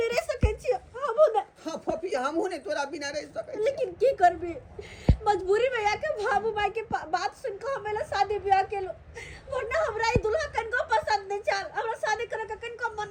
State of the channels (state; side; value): identical; both; correlation 1.00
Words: रह सके छियो हमहु ना हां फोफी हमहु नहीं तोरा बिना रह सके लेकिन की करबी मजबूरी में आके बाबू माई के बात सुन के हमेला शादी ब्याह केलो वरना हमरा ई दुल्हा कन को पसंद नहीं चल हमरा शादी करे के कन को मन